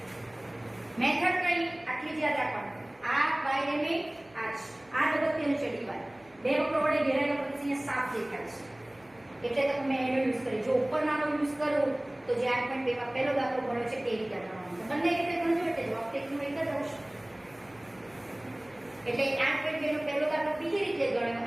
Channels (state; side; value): noise; right; hum, 29 dB below the sound